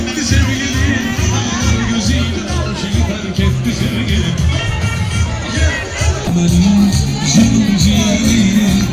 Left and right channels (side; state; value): both; identical; correlation 1.00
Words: sevgilim. Ağlar gözüyle aşık terk etti sevgilim. Benim canım ciğerim